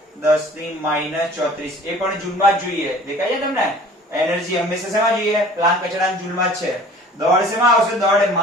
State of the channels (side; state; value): both; normal; correlation 0.48